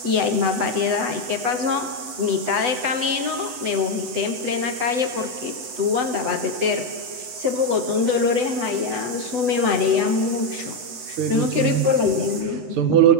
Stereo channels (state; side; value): late; left; 8.0 ms